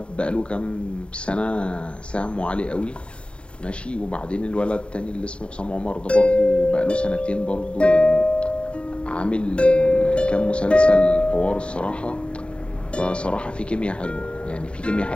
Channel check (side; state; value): right; late; 0.056 ms